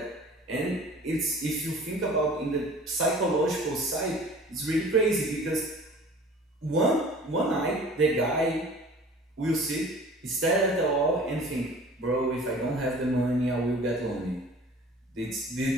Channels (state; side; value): normal; both; correlation 0.45